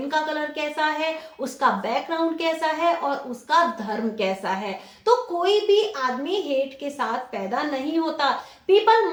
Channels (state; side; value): identical; both; correlation 1.00